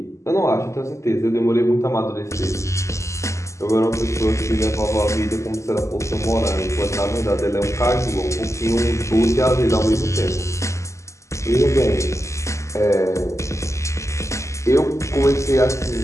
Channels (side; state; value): right; late; 0.14 ms